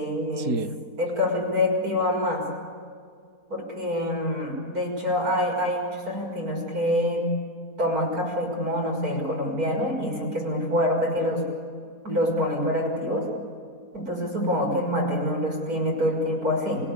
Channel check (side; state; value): left; late; 4.2 ms